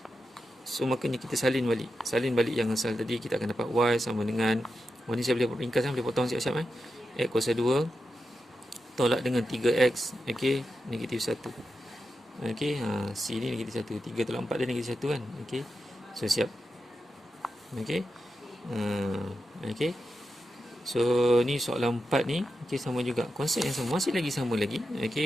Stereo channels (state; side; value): normal; both; correlation 0.89